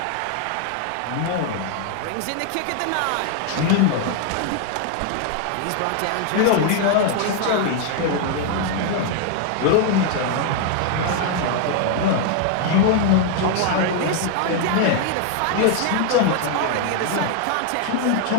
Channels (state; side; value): different; both; correlation 0.00